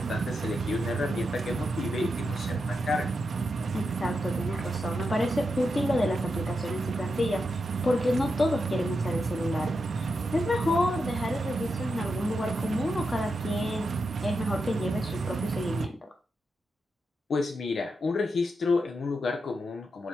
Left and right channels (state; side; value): normal; both; correlation 0.86